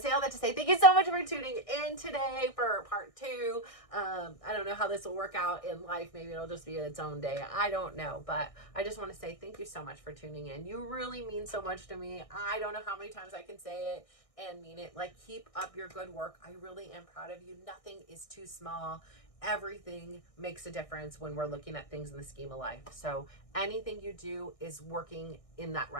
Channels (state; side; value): late; right; 1.6 ms